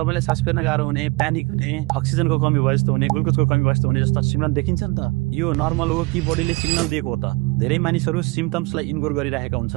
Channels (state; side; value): quieter; left; 24.4 dB